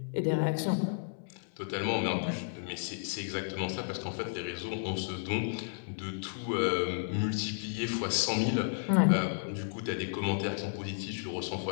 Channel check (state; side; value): silent; right; digital silence